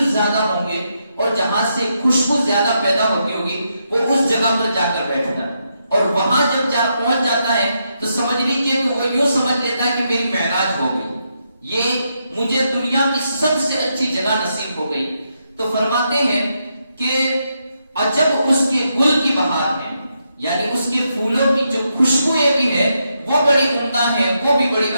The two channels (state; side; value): inverted; both; correlation -0.81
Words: زیادہ ہوں گے اور جہاں سے خوشبو زیادہ پیدا ہوتی ہوگی وہ اس جگہ پر جا کر بیٹھتا ہے، اور وہاں جب پہنچ جاتا ہے تو سمجھ لیجیے کہ وہ یوں سمجھ لیتا ہے کہ میری معراج ہو گئی، یہ مجھے دنیا کی سب سے اچھی جگہ نصیب ہو گئی۔ تو فرماتے ہیں کہ عجب اس کے گل کی بہار ہے، یعنی اس کے پھولوں کی جو خوشبوئیں بھی ہے وہ بڑی عمدہ ہے، وہ بھی بڑی